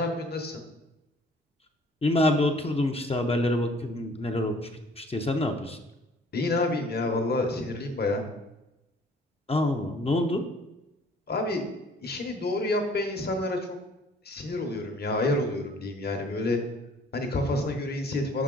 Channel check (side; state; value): both; normal; correlation 0.55